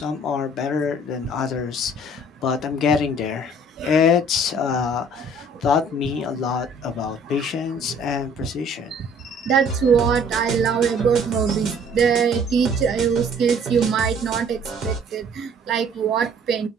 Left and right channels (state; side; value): normal; both; correlation 0.56